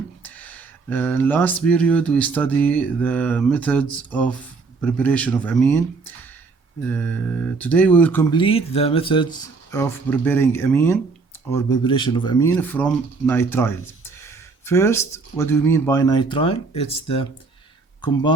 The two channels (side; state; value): left; quieter; 4.3 dB